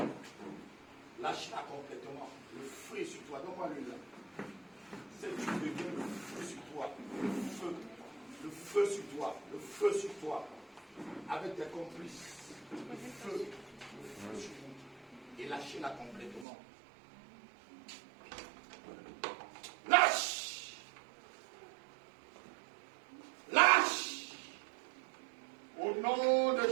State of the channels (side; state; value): left; drops out; at 16.4 s